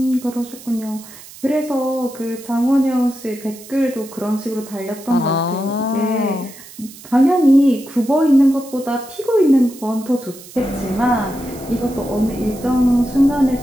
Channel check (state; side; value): noise; right; hiss, 18 dB below the sound